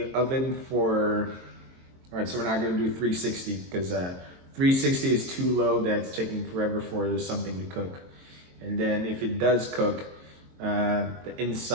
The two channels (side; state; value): left; late; 22 ms